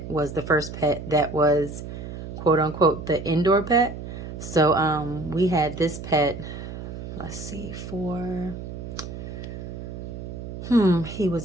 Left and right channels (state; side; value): noise; right; hum, 9 dB below the sound